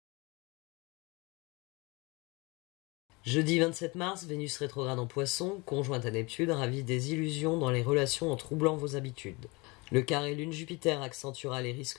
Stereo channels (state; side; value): quieter; right; 26.2 dB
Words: Jeudi 27 mars, Vénus rétrograde en Poisson, conjointe à Neptune, ravit des illusions dans les relations en troublant vos habitudes. Le carré Lune-Jupiter accentuera les